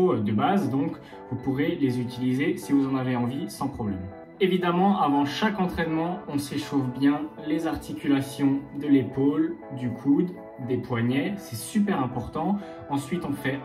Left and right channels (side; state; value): both; identical; correlation 1.00